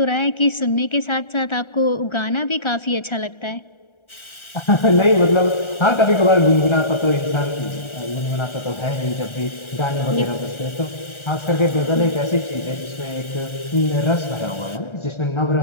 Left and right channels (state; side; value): late; right; 1.3 ms